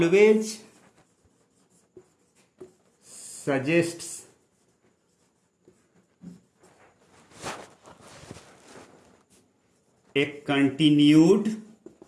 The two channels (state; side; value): identical; both; correlation 1.00